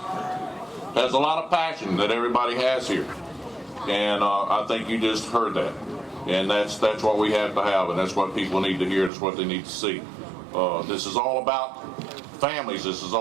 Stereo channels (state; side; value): drops out; left; at 9.1 s